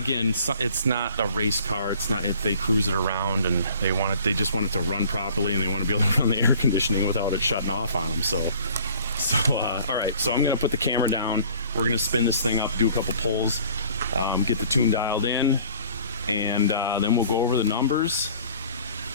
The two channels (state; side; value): inverted; both; correlation -0.52